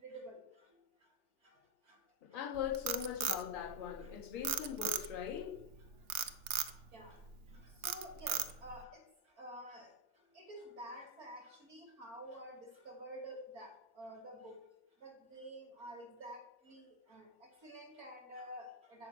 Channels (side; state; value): left; late; 3.4 ms